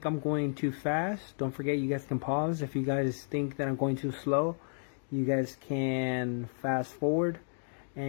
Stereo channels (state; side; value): silent; right; digital silence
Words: I'm going too fast, don't forget you guys can pause. If you guys think that I'm going too slow, you guys can fast forward.